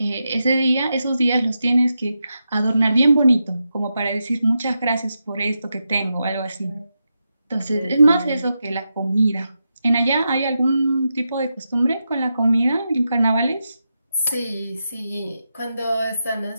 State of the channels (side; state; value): both; inverted; correlation -0.87